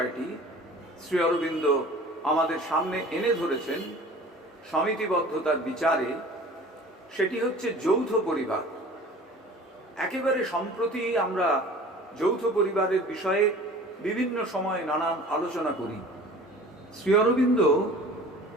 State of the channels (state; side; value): normal; both; correlation 0.44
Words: শ্রী অরবিন্দ আমাদের সামনে এনে ধরেছেন সমিতিবদ্ধতার বিচারে, সেটি হচ্ছে যৌথ পরিবার। একেবারে সম্প্রতি আমরা যৌথ পরিবারের বিষয়ে বিভিন্ন সময় নানান আলোচনা করি। শ্রী অরবিন্দ